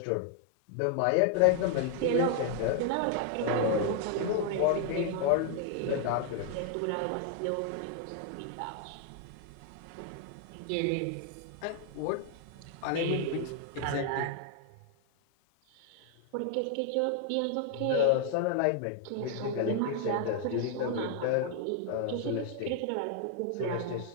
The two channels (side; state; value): both; different; correlation 0.00